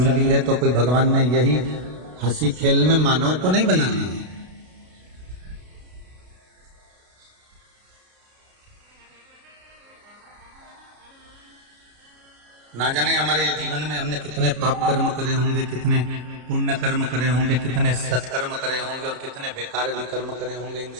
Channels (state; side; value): late; left; 32 ms